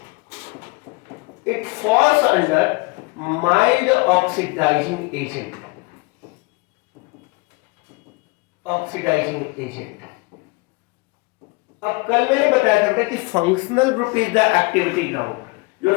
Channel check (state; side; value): quieter; right; 27.2 dB